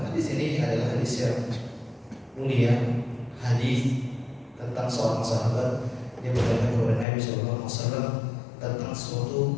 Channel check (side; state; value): right; drops out; at 7.1 s